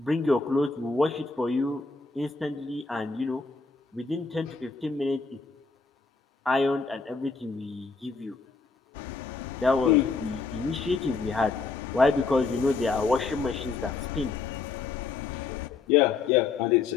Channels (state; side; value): quieter; right; 4.5 dB